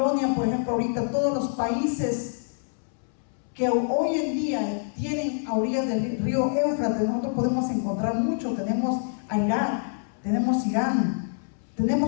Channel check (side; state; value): right; silent; 61 dB below the other